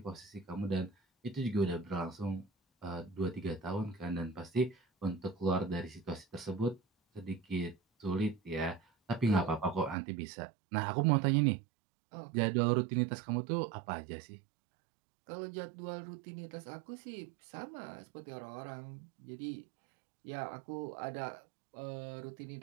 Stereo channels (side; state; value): left; drops out; at 10.0 s